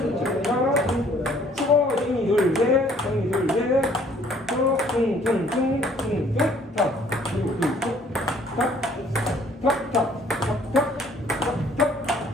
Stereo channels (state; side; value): normal; both; correlation 0.59